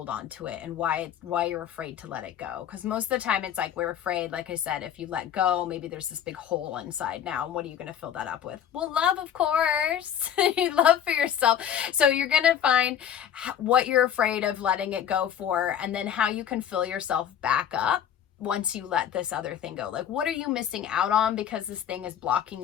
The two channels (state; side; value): quieter; right; 9.5 dB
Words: on to it and why you're afraid to let it go. Because most of the time it's like we're afraid, like I said, if you let go, maybe there's this big hole inside now. And what are you going to fill that up with? Well, love, of course. Love for yourself. So you're going to find what you're afraid of letting it go for, and then how you can fill yourself back up once you let this other thing go. Like, what are you missing out on because this thing is blocking